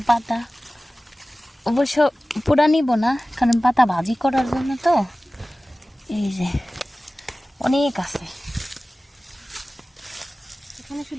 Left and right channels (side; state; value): both; normal; correlation 0.97